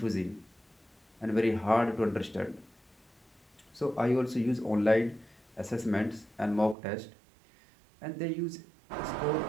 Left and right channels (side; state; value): left; drops out; at 6.8 s